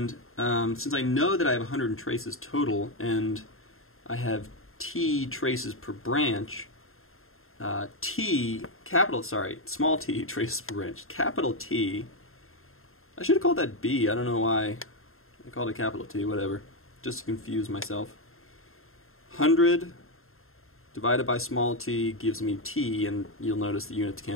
since I know that I have 100 traces total and I have T traces per branch, small t traces per branch, capital T, I should have called that B, I don't know why I called it capital T, whatever, just to confuse myself. 100 divided by small t gives me T, and you'll notice the units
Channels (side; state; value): right; late; 0.61 ms